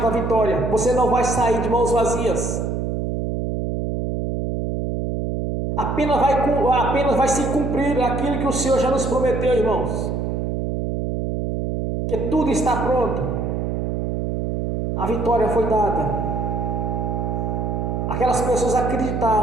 da vitória. Você não vai sair de mãos vazias. Apenas vai se cumprir aquilo que o Senhor já nos prometeu, irmãos. Que tudo está pronto, a vitória foi dada. Aquelas pessoas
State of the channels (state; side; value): noise; right; hum, 1 dB below the sound